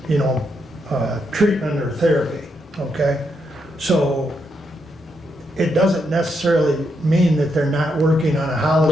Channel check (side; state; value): both; normal; correlation 0.80